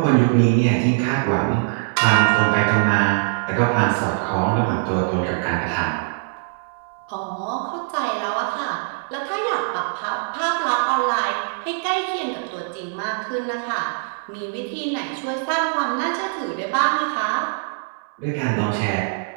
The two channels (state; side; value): silent; left; 64 dB below the other